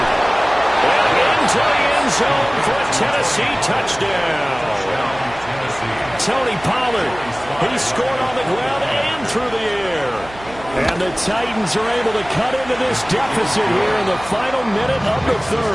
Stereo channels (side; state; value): right; noise; hum, 18 dB below the sound